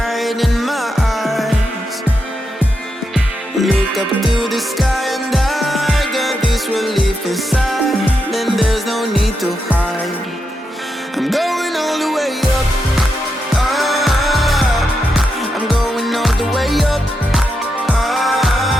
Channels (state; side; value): normal; both; correlation 0.84